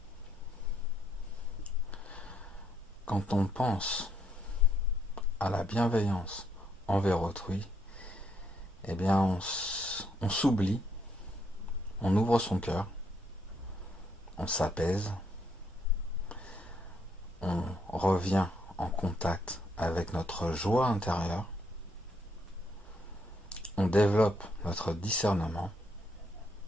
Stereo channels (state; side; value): normal; both; correlation 0.73